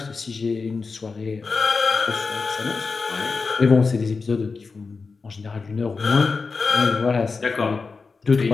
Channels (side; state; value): right; quieter; 4.5 dB